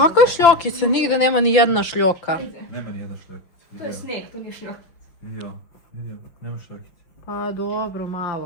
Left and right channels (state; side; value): late; right; 5.9 ms